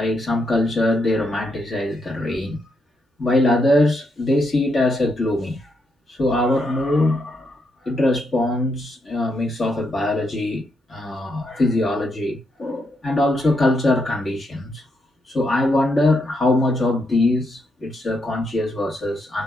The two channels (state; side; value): normal; both; correlation 0.80